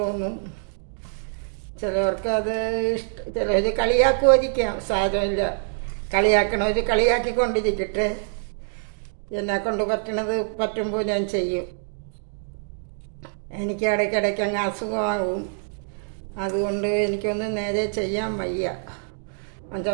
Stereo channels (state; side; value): silent; left; digital silence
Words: ചിലവർക്ക് അത് ചിലർ കളിയാക്കുമായിരിക്കാം, സാരമില്ല. കളിയാക്കണവർ കളിയാക്കിക്കൊണ്ടിരിക്കട്ടെ. എന്നെക്കൊണ്ട് പറ്റുമ്പോൾ ഞാൻ ചെയ്യും. എനിക്ക് ഇടയ്ക്കിടയ്ക്ക് അങ്ങ് അസുഖമാകും, അതുകൊണ്ട് എനിക്കൊന്നും നേരെ ചെയ്യാൻ വയ്യ.